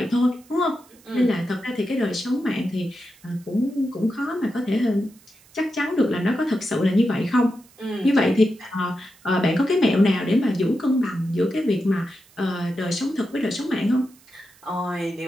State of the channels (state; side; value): noise; right; hiss, 28 dB below the sound